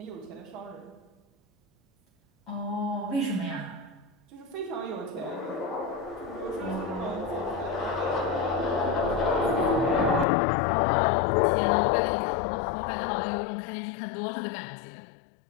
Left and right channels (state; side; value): drops out; right; at 10.2 s